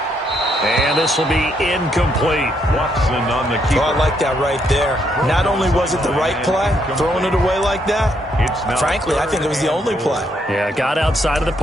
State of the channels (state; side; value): normal; both; correlation 0.74